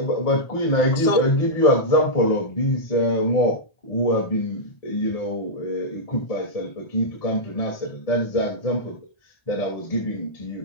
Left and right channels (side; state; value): right; late; 1.6 ms